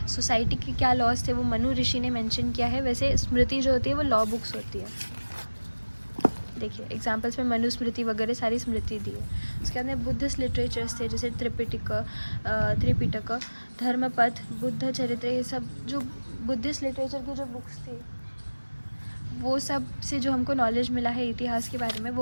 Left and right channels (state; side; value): inverted; both; correlation -1.00